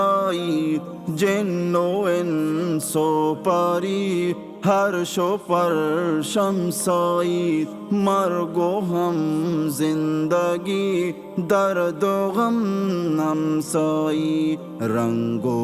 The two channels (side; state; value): both; identical; correlation 1.00